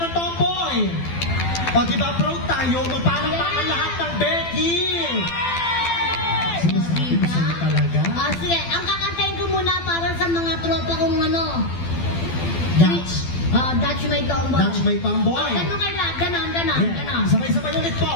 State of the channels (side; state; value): right; late; 12 ms